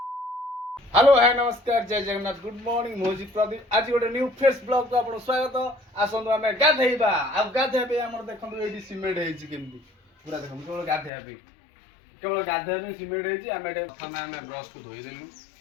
हेलो है नमस्कार जय जगन्नाथ गुड मॉर्निंग मोजी प्रदीप आज गोटे न्यू फ्रेश ब्लॉग को आपन स्वागत आसंदु आमे गाधेइबा आ गाधेबे हमर देखंदु एडी सिमेंट हेछि केमती पूरा देखंदु केवल गाधेबे सिमेंट हेछि आमे एडे प्रथम आमे ब्रश को धोई देलु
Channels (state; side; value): drops out; right; at 11.1 s